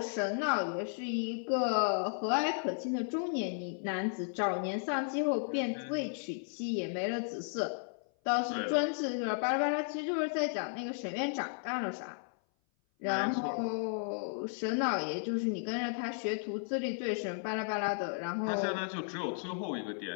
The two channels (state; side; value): silent; right; 55 dB below the other